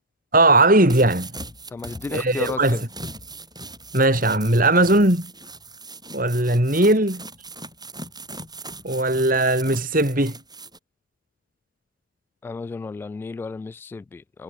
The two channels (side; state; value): both; normal; correlation 0.18